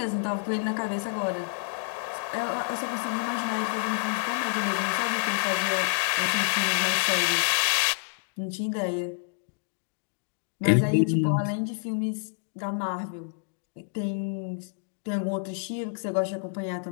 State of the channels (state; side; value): silent; right; digital silence